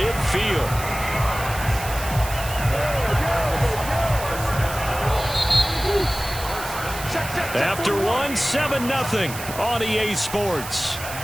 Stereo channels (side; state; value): right; noise; hiss, 10 dB below the sound